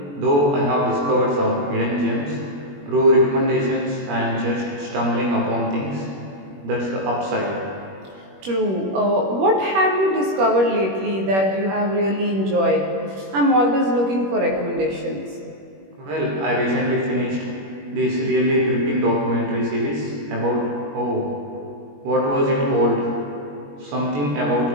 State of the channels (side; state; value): left; late; 21 ms